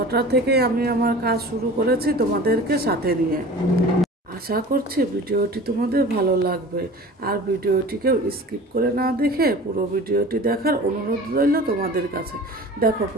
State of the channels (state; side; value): normal; both; correlation 0.40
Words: থেকে আমি আমার কাজ শুরু করেছি তোমাদেরকে সাথে নিয়ে। আশা করছি ভিডিওটি তোমাদের ভালো লাগবে, আর ভিডিওটিকেও স্কিপ করে না দেখে পুরো ভিডিওটি দেখার অনুরোধ রইল তোমাদের কাছে। দেখো,